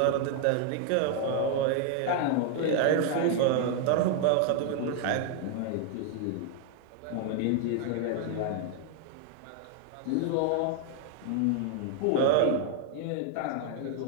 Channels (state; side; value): different; both; correlation 0.00